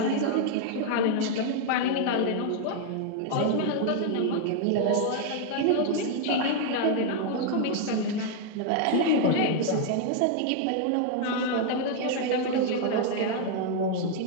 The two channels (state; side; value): different; both; correlation 0.00